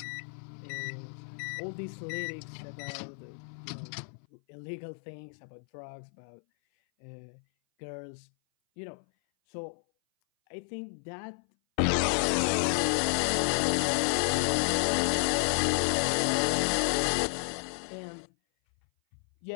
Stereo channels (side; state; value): right; silent; 57 dB below the other